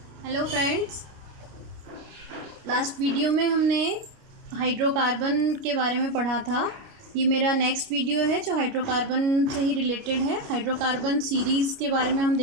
Hello friends. Last video में हमने hydrocarbon के बारे में पढ़ा था। ये मेरा नेक्स्ट वीडियो है जो हाइड्रोकार्बन से ही रिलेटेड है। हाइड्रोकार्बन सीरीज़ के बारे में हम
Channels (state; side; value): late; left; 29 ms